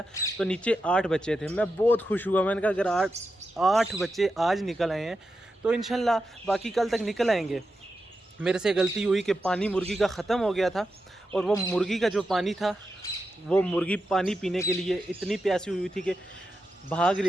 तो नीचे 8 बच्चे थे। मैं बहुत खुश हुआ, मैंने कहा अगर 8 बच्चे आज निकल आए हैं तो इंशाल्लाह बाकी कल तक निकल आएंगे। मेरे से गलती हुई कि पानी मुर्गी का ख़त्म हो गया था और वो मुर्गी का जो पानी था, वो मुर्गी पानी पीने के लिए इतनी प्यासी हुई थी कि भाग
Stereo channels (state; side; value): normal; both; correlation 0.88